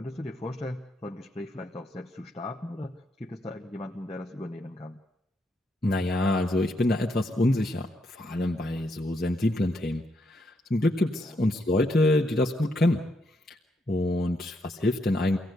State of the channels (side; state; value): both; normal; correlation 0.78